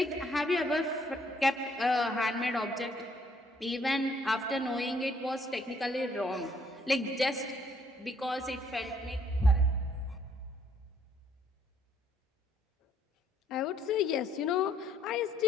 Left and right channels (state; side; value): normal; both; correlation 0.66